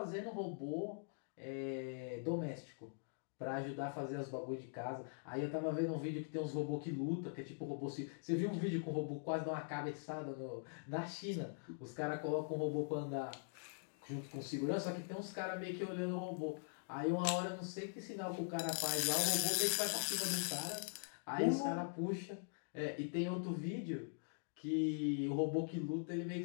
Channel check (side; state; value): right; silent; digital silence